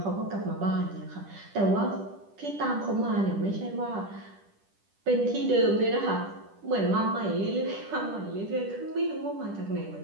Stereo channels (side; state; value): left; late; 10 ms